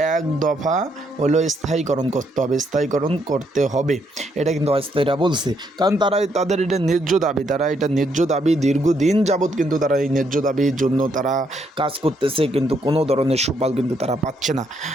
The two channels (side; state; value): both; normal; correlation 0.74